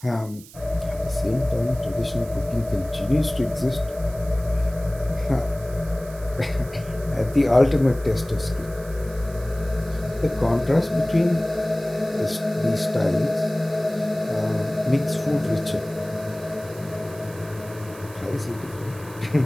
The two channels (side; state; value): right; noise; hiss, 20 dB below the sound